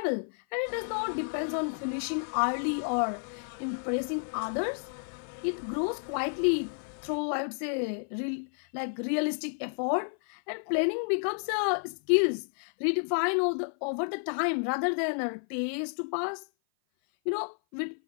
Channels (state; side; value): silent; right; 55 dB below the other